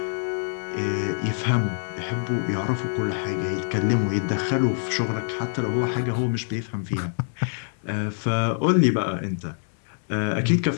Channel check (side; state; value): right; silent; digital silence